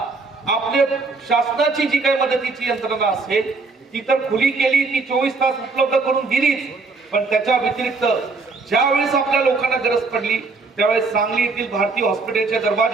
आपले शासनाची जी काही मदतीची यंत्रणा असेल ती तर खुली केली, ती 24 तास उपलब्ध करून दिलीच. पण त्याच्या व्यतिरिक्त ज्यावेळेस आपल्या लोकांना गरज पडली त्यावेळेस सांगली येथील भारतीय हॉस्पिटलचे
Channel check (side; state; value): left; quieter; 4.0 dB